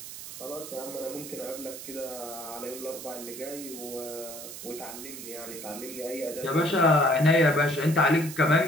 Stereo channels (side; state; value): right; noise; hiss, 11 dB below the sound